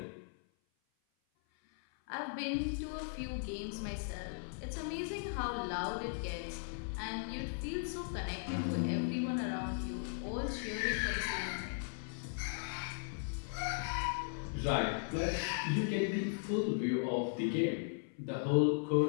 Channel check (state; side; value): silent; right; 53 dB below the other